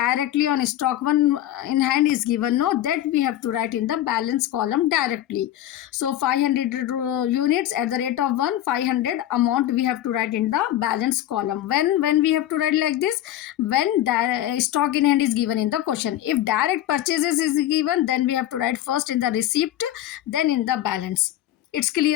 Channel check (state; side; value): quieter; right; 12.9 dB